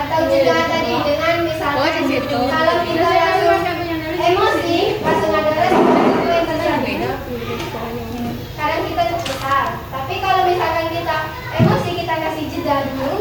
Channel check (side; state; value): both; identical; correlation 1.00